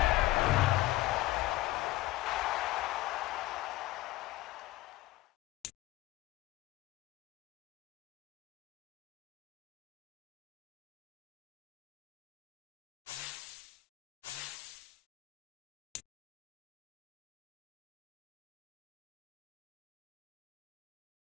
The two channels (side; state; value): right; quieter; 17.7 dB